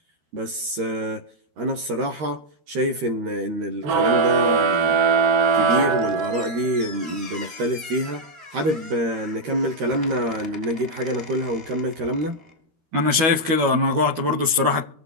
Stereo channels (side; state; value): left; late; 13 ms